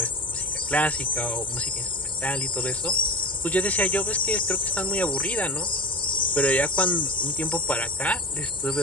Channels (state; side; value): normal; both; correlation 0.30